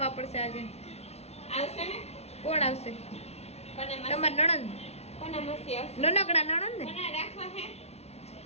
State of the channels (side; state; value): right; late; 0.31 ms